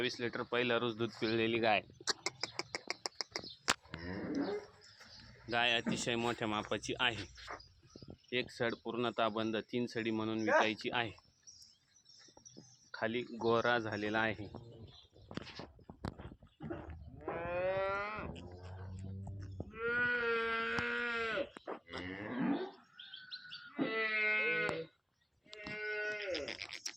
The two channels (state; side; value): identical; both; correlation 1.00